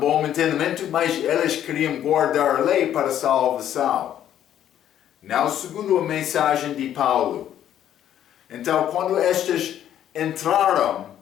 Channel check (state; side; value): quieter; right; 10.8 dB